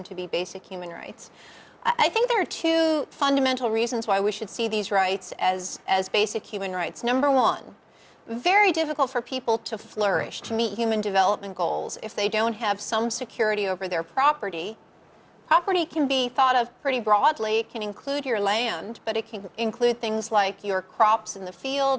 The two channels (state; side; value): identical; both; correlation 1.00